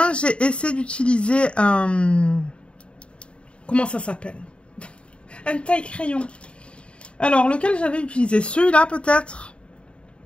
j'ai essayé d'utiliser un... Comment ça s'appelle? Un taille-crayon. Alors, lequel j'avais utilisé? Celui-là, peut-être.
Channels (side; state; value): right; late; 0.057 ms